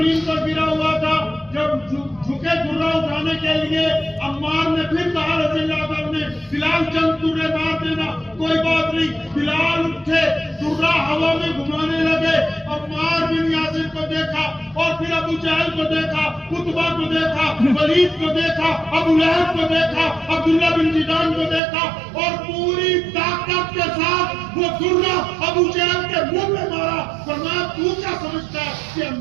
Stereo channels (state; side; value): drops out; left; at 21.6 s